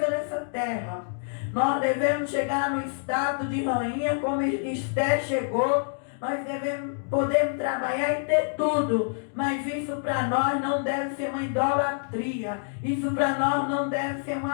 dessa terra. Nós devemos chegar no estado de rainha como Esther chegou. Nós podemos trabalhar e ter tudo, mas isso para nós não deve ser uma idolatria. Isso para nós não deve ser um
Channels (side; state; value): right; silent; digital silence